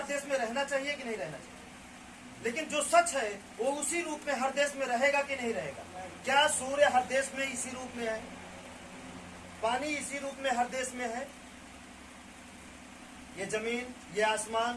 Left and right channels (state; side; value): identical; both; correlation 1.00